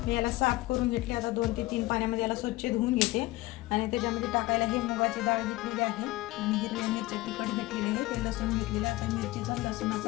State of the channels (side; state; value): right; quieter; 19.4 dB